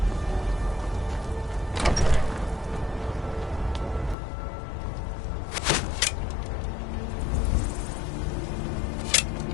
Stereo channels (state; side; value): drops out; right; at 4.2 s